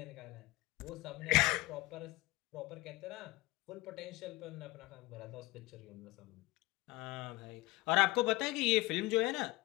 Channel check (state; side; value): quieter; right; 20.8 dB